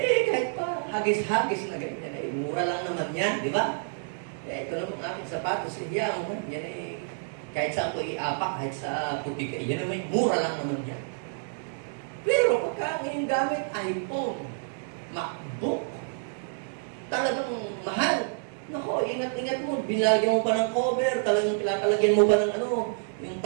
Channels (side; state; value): left; silent; 59 dB below the other